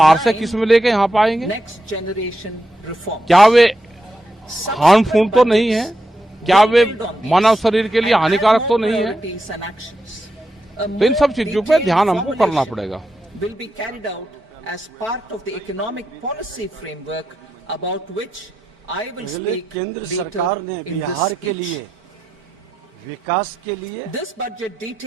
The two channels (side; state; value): both; normal; correlation 0.86